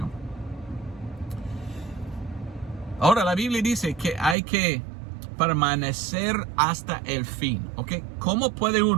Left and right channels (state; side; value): drops out; left; at 4.4 s